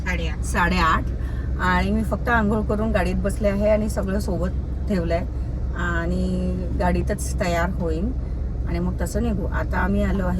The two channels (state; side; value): identical; both; correlation 1.00